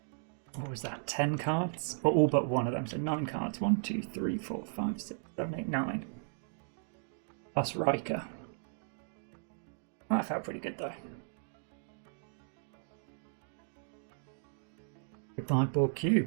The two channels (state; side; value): silent; left; digital silence